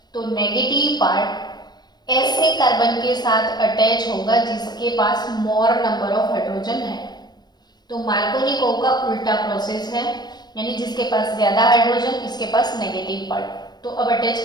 तो नेगेटिव पार्ट ऐसे कार्बन के साथ अटैच होगा जिसके पास मोर नंबर ऑफ हाइड्रोजन है। तो मार्कोनिकोव का उल्टा प्रोसेस है, यानी जिसके पास ज्यादा हाइड्रोजन इसके पास नेगेटिव पार्ट। तो अब अटैच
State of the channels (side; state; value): right; late; 0.20 ms